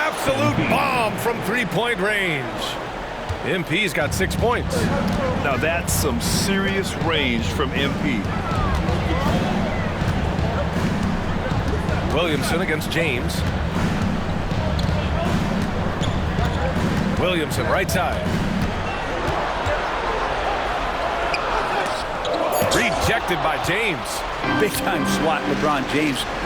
bomb from three-point range. MP's got 6 points. Now that's some serious range from MP. Williamson against James. Williamson right side. Rejected by James. Big time swat, LeBron James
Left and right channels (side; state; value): both; identical; correlation 1.00